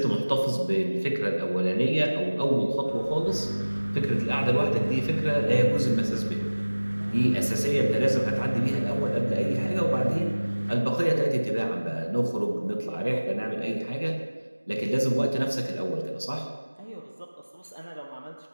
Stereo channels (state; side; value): inverted; both; correlation -1.00